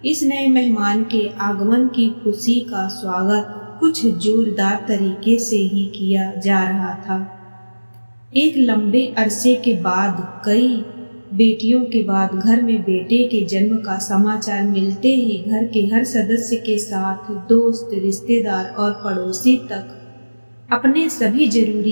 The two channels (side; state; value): both; inverted; correlation -1.00